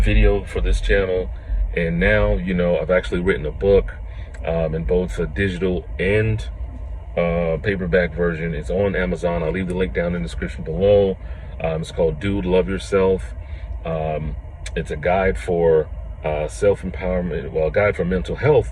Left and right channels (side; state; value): both; identical; correlation 1.00